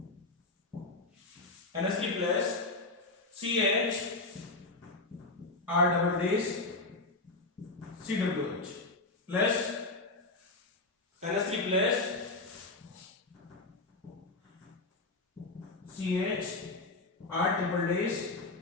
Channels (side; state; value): right; quieter; 3.2 dB